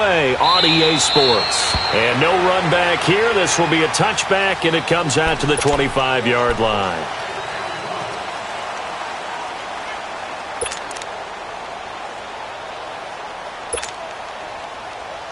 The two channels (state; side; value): identical; both; correlation 1.00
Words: on EA Sports. And no run back here. This will be a touchback, and it comes out to the 25-yard line.